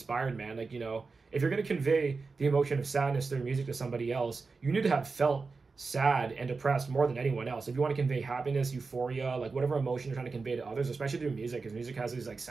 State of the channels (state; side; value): quieter; left; 4.3 dB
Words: man. Like, you know, if you're going to convey the emotion of sadness through music to somebody else, you need to have felt sad and depressed more than anyone else. If you want to convey happiness, euphoria, like whatever emotion you're trying to convey to others, especially through music, because music has these like